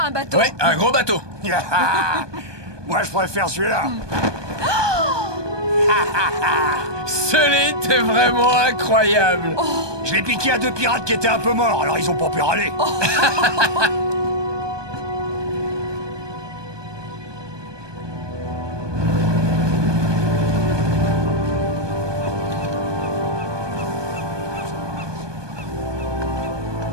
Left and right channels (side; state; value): left; late; 1.2 ms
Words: un bateau. Ouais, un gros bateau. Moi, je préfère celui-là. Sully, t'es vraiment incroyable. Je l'ai piqué à 2 pirates qui étaient un peu morts, alors ils ont pas pu râler.